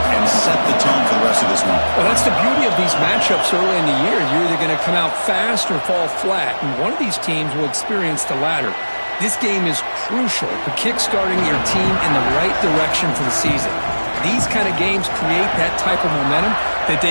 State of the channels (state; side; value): inverted; both; correlation -1.00